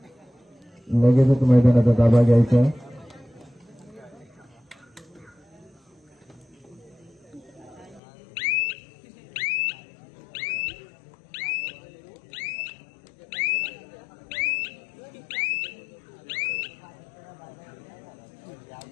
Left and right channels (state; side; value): drops out; right; at 8.0 s